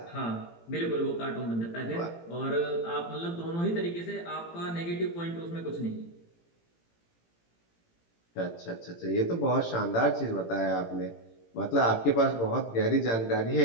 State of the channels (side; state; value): right; late; 18 ms